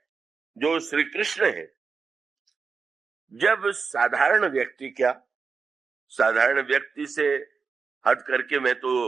जो श्री कृष्ण है, जब साधारण व्यक्ति क्या, साधारण व्यक्ति से हट करके मैं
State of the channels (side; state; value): left; quieter; 5.2 dB